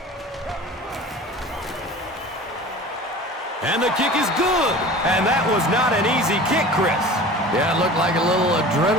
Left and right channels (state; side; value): normal; both; correlation 0.39